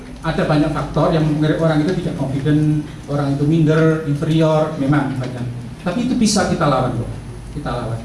Ada banyak faktor yang membuat orang itu tidak confident, orang itu minder, inferior, memang banyak. Tapi itu bisa kita lawan kok. Kita lawan.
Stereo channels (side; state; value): both; identical; correlation 1.00